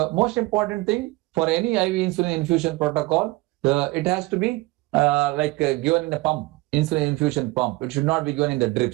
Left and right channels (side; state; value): left; quieter; 21.6 dB